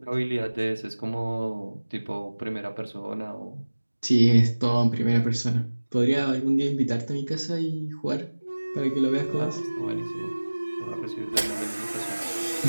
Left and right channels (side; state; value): both; inverted; correlation -1.00